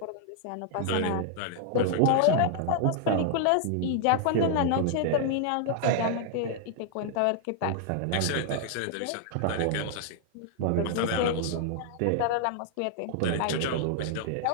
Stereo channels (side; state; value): both; different; correlation 0.00